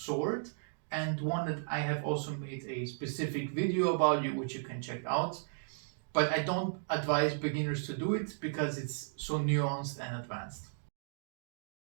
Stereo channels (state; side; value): silent; left; digital silence